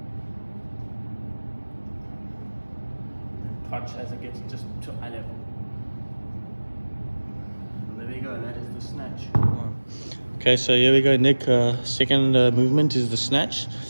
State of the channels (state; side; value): inverted; both; correlation -1.00